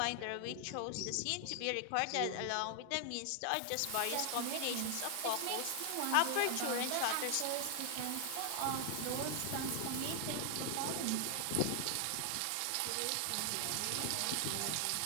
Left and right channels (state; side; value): different; both; correlation 0.00